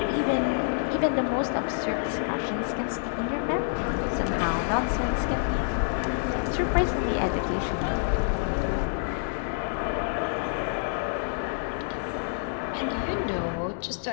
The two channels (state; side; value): silent; right; 57 dB below the other